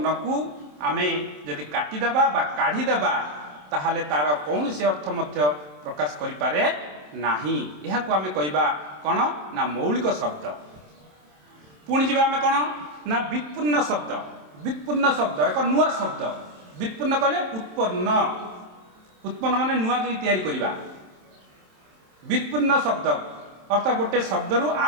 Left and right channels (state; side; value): late; left; 27 ms